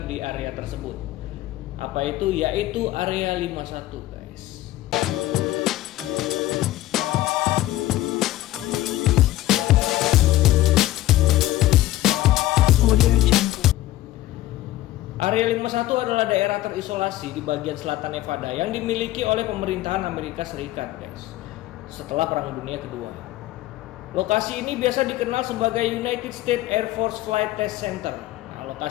di area tersebut. Apa itu? Yaitu Area 51 guys. Area 51 adalah daerah terisolasi di bagian selatan Nevada yang dimiliki oleh pemerintahan Amerika Serikat, guys, setelah Perang Dunia Kedua. Lokasi ini biasa dikenal sebagai United States Air Force Flight Test Center. Nah,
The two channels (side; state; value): right; quieter; 15.5 dB